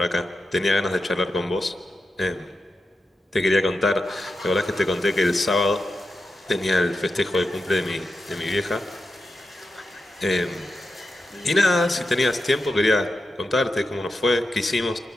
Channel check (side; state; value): both; normal; correlation 0.89